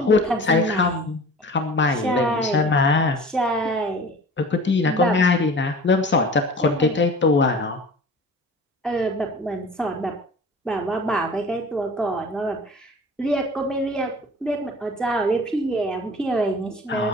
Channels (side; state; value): both; normal; correlation 0.42